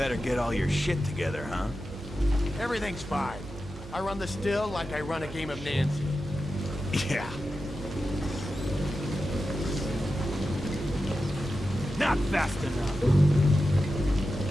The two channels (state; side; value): noise; right; hum, 14 dB below the sound